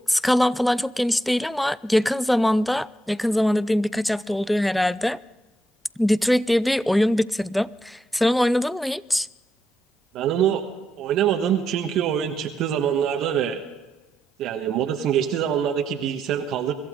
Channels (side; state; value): both; normal; correlation 0.82